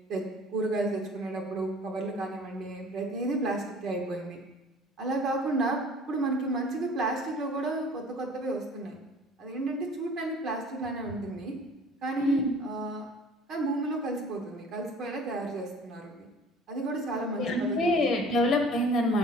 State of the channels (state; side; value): normal; both; correlation 0.48